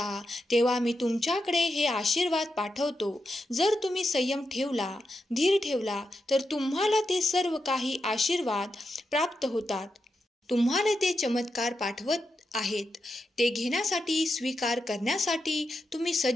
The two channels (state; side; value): normal; both; correlation 0.87